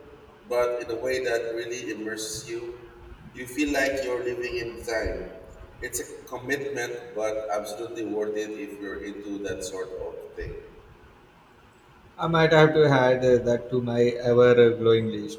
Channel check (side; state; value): both; identical; correlation 1.00